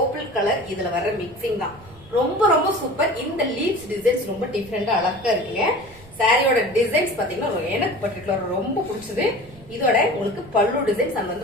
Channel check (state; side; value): noise; right; rumble, 22 dB below the sound